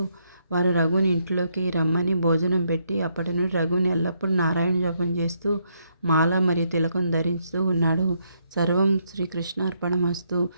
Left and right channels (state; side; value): inverted; both; correlation -0.75